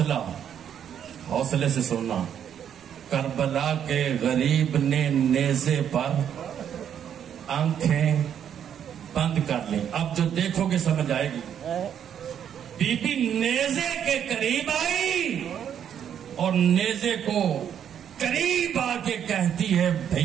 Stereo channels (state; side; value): quieter; left; 9.0 dB